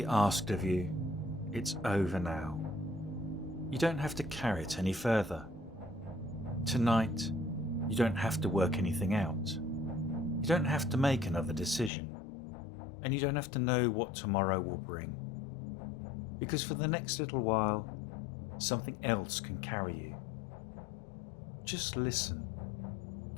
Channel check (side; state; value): right; drops out; at 11.9 s